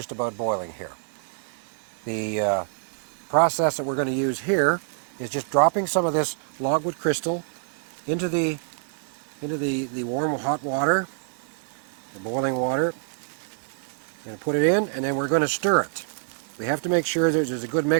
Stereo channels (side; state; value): left; silent; digital silence